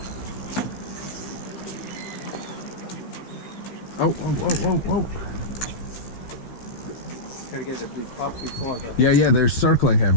Oh, oh, oh, oh, oh. Gotta get it up before the... Yeah, they're circling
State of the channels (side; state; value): right; late; 15 ms